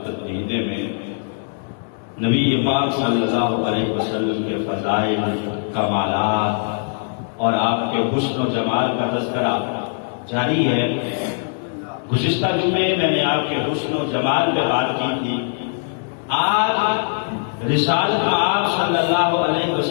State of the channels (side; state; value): right; silent; 65 dB below the other